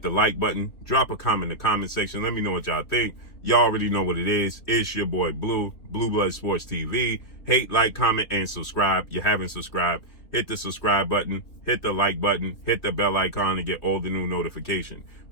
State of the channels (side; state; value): right; late; 3.5 ms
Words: the like button. Drop a comment in the comment section. Let me know what y'all think. Y'all already know what it is. It's your boy Blue, Blue Blood Sports TV. Hate, like, comment, and subscribe. You haven't subscribed, hit the subscribe button, hit the like button, hit the bell icon to get all the new notifications.